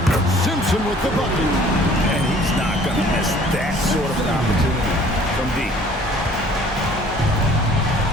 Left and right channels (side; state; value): both; normal; correlation 0.53